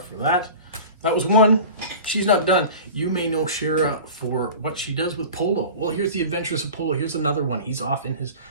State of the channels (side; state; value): both; inverted; correlation -0.37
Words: for that. That was one. She's not done. You may know Shara for what she does with Polo. Well, here's the Adventures of Polo. Here's another one. He's off in his